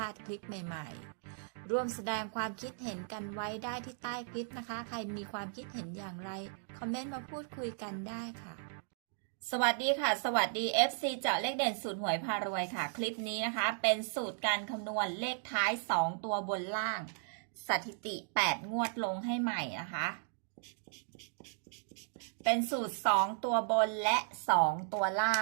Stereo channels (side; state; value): left; silent; digital silence